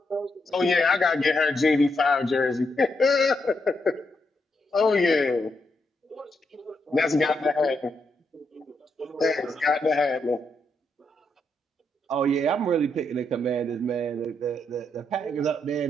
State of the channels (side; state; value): both; normal; correlation 0.80